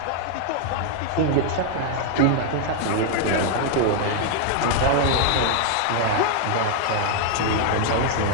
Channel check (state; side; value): different; both; correlation 0.00